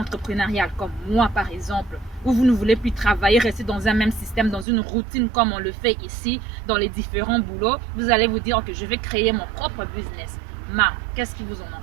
comme moi par exemple, où vous ne voulez plus travailler, rester dans un même système, dans une routine comme on le fait ici, dans les différents boulots, vous allez vous dire que je vais créer mon propre business. Mais qu'est-ce qui vous en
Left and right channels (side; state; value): left; drops out; at 4.7 s